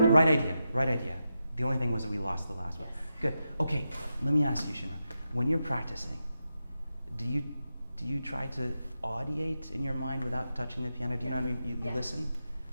Right idea. The only thing was that we lost the last one. Good. Okay, let me ask you, Xinran. When you're practicing, do you try to audiate in your mind without touching the piano? Do you know what I mean? You listen?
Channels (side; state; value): both; inverted; correlation -0.88